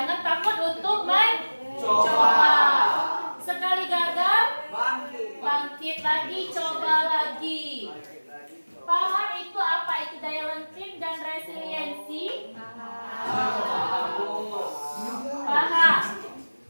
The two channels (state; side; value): inverted; both; correlation -1.00